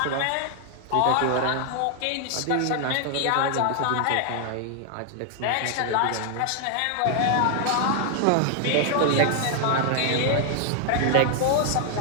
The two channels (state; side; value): different; both; correlation 0.00